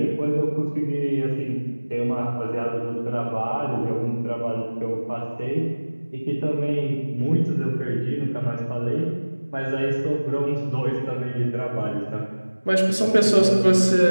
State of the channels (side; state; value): both; inverted; correlation -1.00